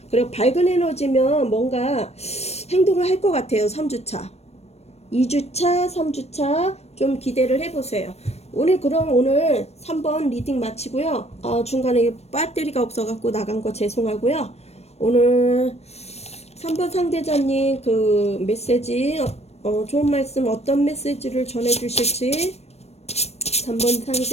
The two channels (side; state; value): right; late; 0.31 ms